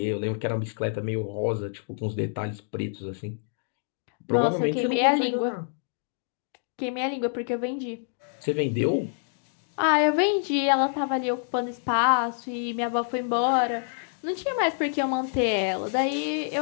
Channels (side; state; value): right; silent; digital silence